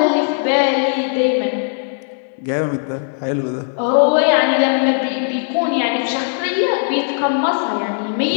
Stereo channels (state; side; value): silent; right; 67 dB below the other